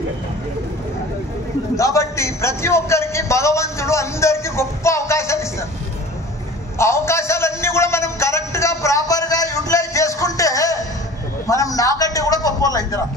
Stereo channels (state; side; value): normal; both; correlation 0.42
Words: కాబట్టి ప్రతి ఒక్కరికి భగవంతుడు అందరికి గొప్ప అవకాశాలు ఇస్తారు. ఆ అవకాశాలన్నీ కూడా మనం కరెక్ట్ గా ప్రాపర్ గా యూటిలైజ్ చేసుకుంటే మనం నాకంటే కూడా గొప్ప వాళ్ళు అవుతారు